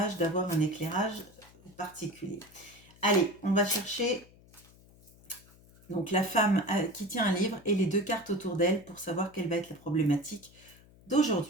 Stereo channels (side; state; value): left; noise; hum, 25 dB below the sound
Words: d'avoir un éclairage particulier. Allez, on va chercher donc la femme qui tient un livre et les deux cartes autour d'elle pour savoir quelle va être la problématique